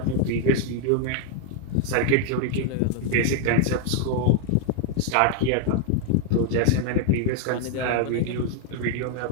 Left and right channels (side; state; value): both; different; correlation 0.00